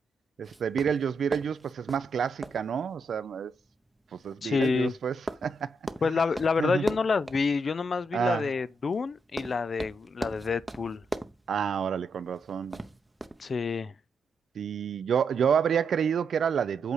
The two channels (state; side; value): normal; both; correlation 0.80